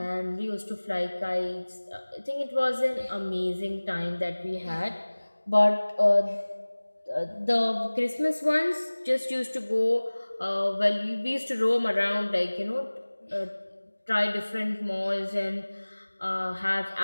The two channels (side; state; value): both; inverted; correlation -1.00